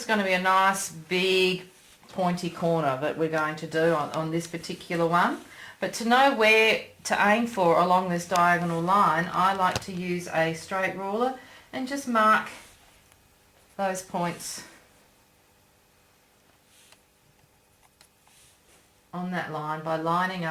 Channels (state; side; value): identical; both; correlation 1.00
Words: going to be a nice big pointy corner that we're going to do on this particular one. But to know where to aim for along this diagonal line, I like to use a straight ruler and just mark those points on that line by lining